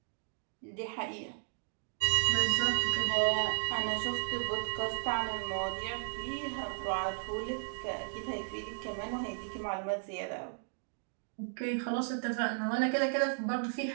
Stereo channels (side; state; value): left; silent; digital silence